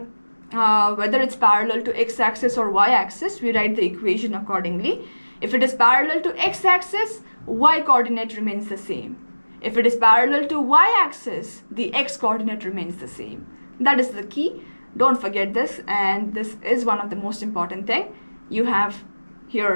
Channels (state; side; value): inverted; both; correlation -1.00